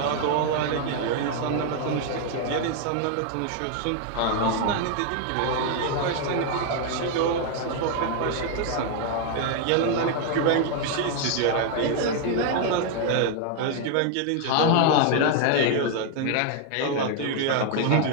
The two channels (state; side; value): different; both; correlation 0.00